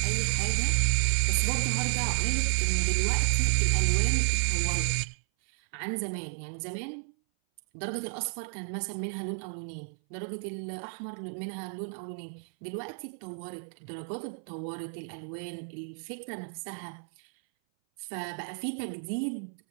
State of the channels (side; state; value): left; silent; 57 dB below the other